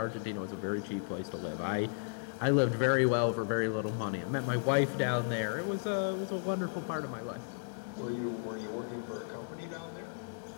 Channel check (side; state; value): right; silent; digital silence